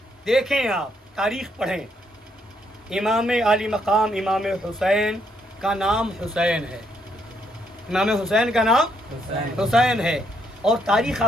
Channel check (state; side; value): normal; both; correlation 0.73